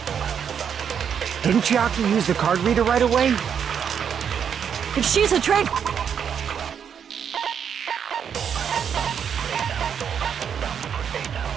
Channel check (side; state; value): left; quieter; 7.8 dB